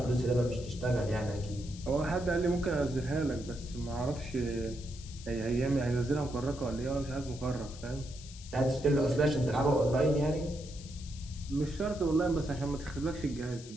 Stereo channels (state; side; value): noise; left; hiss, 17 dB below the sound